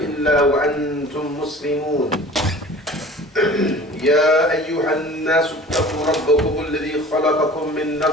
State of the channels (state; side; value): normal; both; correlation 0.43